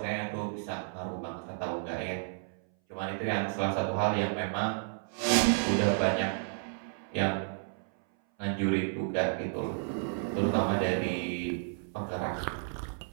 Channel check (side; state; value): left; silent; 57 dB below the other